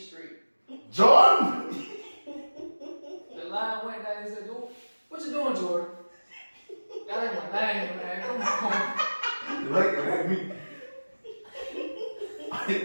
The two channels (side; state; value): both; inverted; correlation -1.00